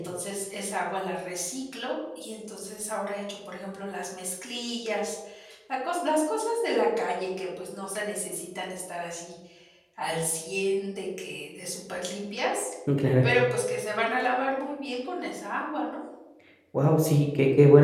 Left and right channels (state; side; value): identical; both; correlation 1.00